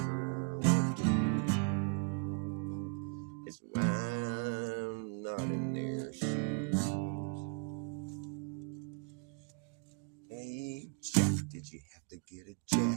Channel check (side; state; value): left; quieter; 37.1 dB